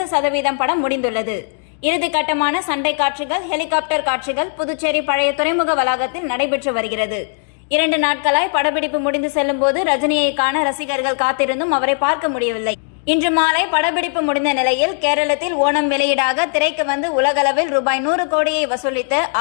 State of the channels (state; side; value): silent; right; 67 dB below the other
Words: படம் முடிந்துள்ளது. இறுதிக்கட்டமான சண்டை காட்சிகள், ஹெலிகாப்டர் காட்சிகள் புதுச்சேரி பழைய துறைமுக வளாகத்தில் நடைபெற்று வருகிறது. 2 நாட்களாய் படப்பிடிப்பு முடிந்து செல்லும் போது ரஜினியை காண ரசிகர்கள் காத்திருந்தும் அவரை பார்க்க முடியவில்லை. இன்று மாலை படப்பிடிப்பு முடிந்த நிலையில் கேரளத்தில் ஓணம் வெளியீடாக திரைக்கு வந்து உலகளவில் ரூபாய் 100 கோடியை வசூலித்த